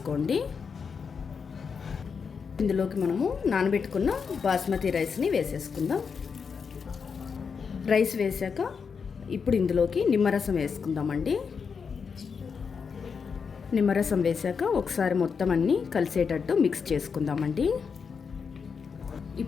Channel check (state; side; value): quieter; right; 5.9 dB